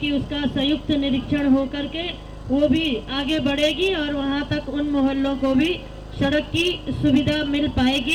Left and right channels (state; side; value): identical; both; correlation 1.00